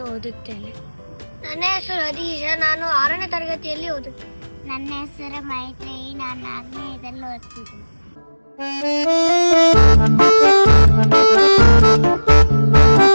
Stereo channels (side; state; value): both; inverted; correlation -1.00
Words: ಓದುತ್ತೇನೆ. ನನ್ನ ಹೆಸರು ಹರೀಶ, ನಾನು 6ನೇ ತರಗತಿಯಲ್ಲಿ ಓದುತ್ತೇನೆ. ನನ್ನ ಹೆಸರು ಮೈತ್ರಿ, ನಾನು 4ನೇದಲ್ಲಿ ಓದ್ತಿದ್ದೀನಿ.